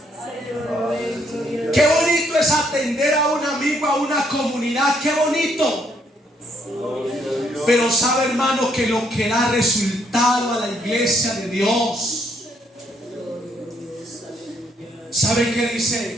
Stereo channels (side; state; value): both; normal; correlation 0.71